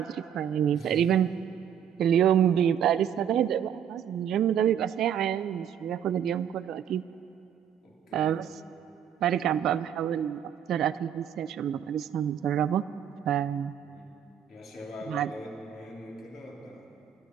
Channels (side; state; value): left; quieter; 9.1 dB